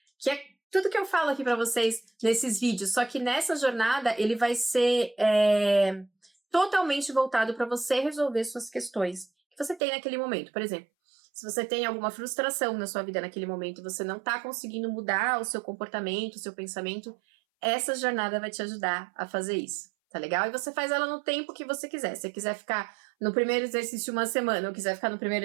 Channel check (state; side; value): drops out; left; at 9.8 s